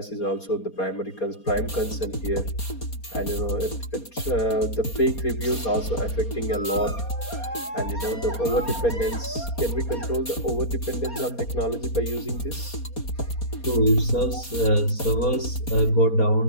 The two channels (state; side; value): late; right; 4.3 ms